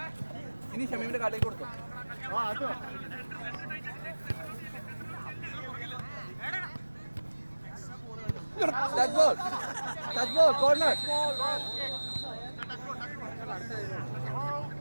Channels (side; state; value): both; inverted; correlation -1.00